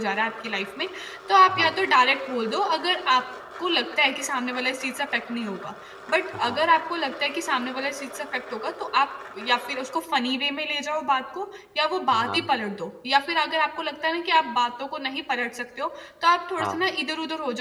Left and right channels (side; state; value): both; identical; correlation 1.00